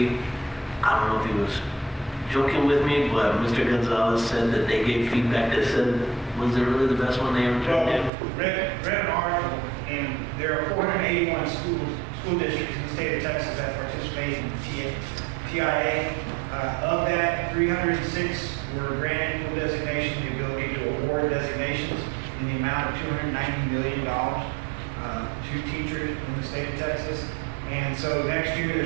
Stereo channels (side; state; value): left; drops out; at 8.1 s